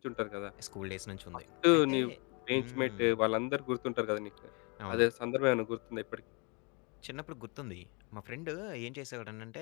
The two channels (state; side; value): quieter; right; 32.8 dB